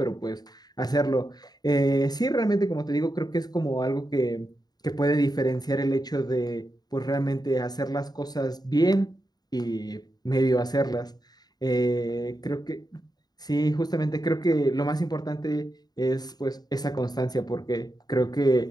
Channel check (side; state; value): right; late; 0.19 ms